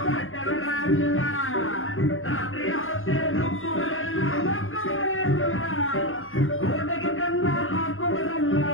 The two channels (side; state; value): right; late; 0.60 ms